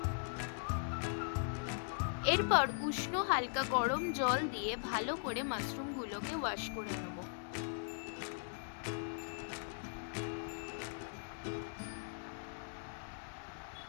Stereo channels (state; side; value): silent; right; digital silence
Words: এরপর উষ্ণ হালকা গরম জল দিয়ে ভালো করে মাশরুমগুলোকে ওয়াশ করে নেব।